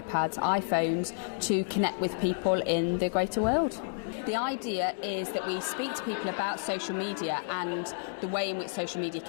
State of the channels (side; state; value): right; silent; digital silence